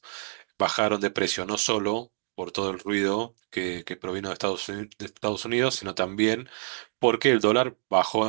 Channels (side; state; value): left; silent; digital silence